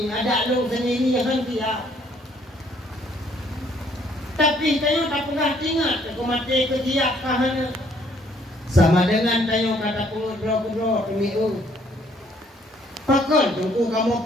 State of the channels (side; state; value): both; normal; correlation 0.64